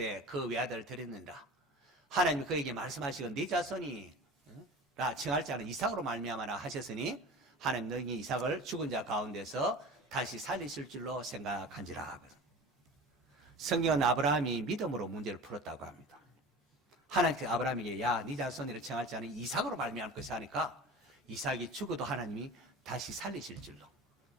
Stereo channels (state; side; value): normal; both; correlation 0.36